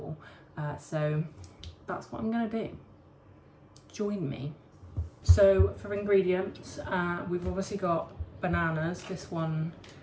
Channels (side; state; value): both; identical; correlation 1.00